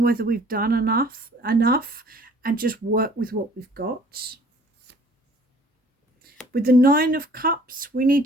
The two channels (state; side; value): normal; both; correlation 0.54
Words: whether we've done enough and just work with what we've got. With the 9 of Cups, we need